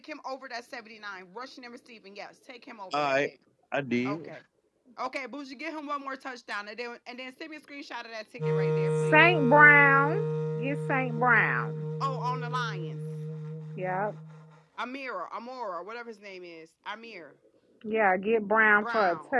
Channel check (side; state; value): both; identical; correlation 1.00